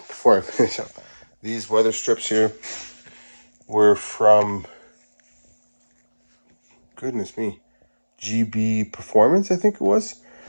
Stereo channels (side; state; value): both; inverted; correlation -1.00